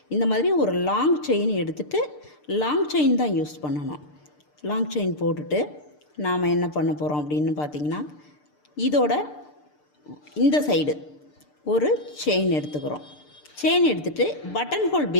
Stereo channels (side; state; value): right; late; 6.7 ms